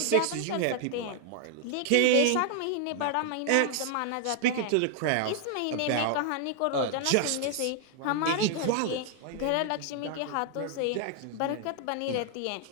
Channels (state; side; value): different; both; correlation 0.00